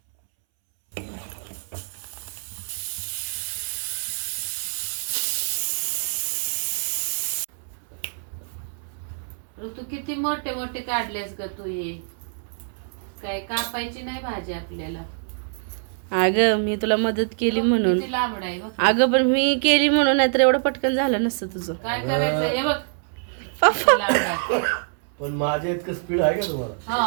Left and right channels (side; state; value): left; silent; 62 dB below the other